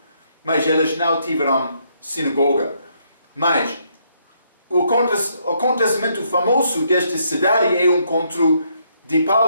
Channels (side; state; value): both; inverted; correlation -0.73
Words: Mas eles não tiveram sinagoga. Mas o acontecimento famoso desta cidade é o encontro de